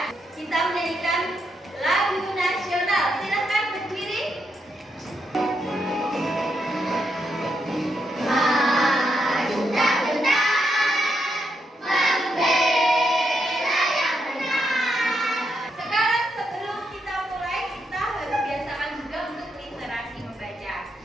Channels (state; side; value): normal; both; correlation 0.80